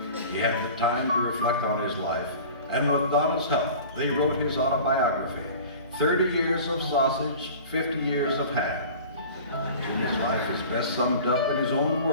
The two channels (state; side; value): inverted; both; correlation -0.41